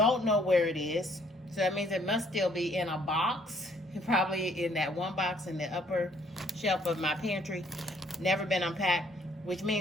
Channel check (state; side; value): normal; both; correlation 0.63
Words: know where it is. So that means it must still be in a box. Probably in that one box in the upper shelf of my pantry. Never been unpacked. Which